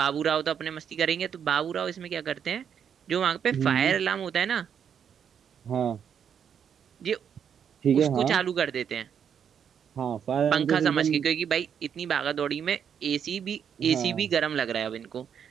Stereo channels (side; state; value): left; quieter; 8.0 dB